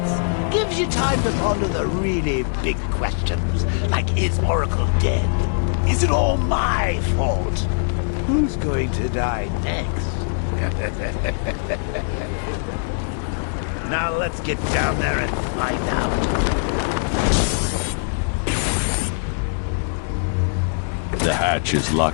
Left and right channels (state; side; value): silent; right; digital silence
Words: Gives you time to ponder the really big questions, like is Oracle dead? Is it all my fault? Who's going to die next? Now let's get down there and find out. The hatch is